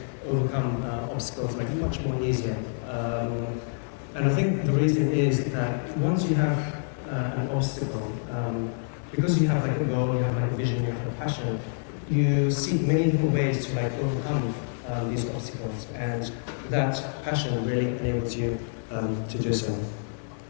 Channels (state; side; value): silent; right; 60 dB below the other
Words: overcome obstacles like much more easier. And I think the reason is that once you have an obstacle, because you have like a goal, you have like a vision, you have a passion, you seek many different ways to like overcome these obstacles, and that passion really enables you to do so.